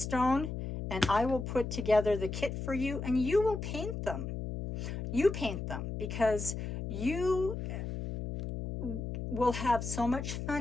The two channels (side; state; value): left; noise; hum, 5 dB below the sound